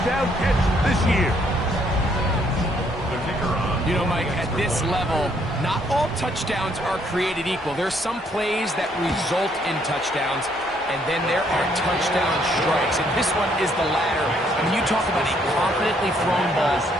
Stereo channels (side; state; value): both; normal; correlation 0.68